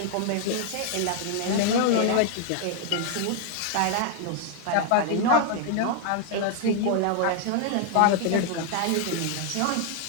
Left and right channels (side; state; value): both; different; correlation 0.00